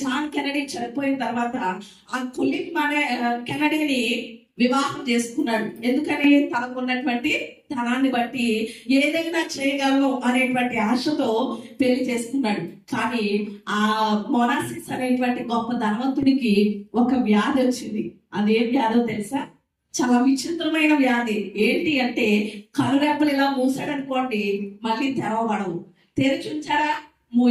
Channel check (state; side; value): identical; both; correlation 1.00